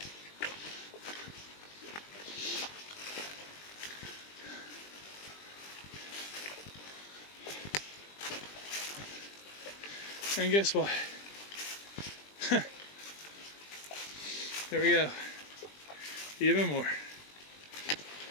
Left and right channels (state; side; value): late; right; 20 ms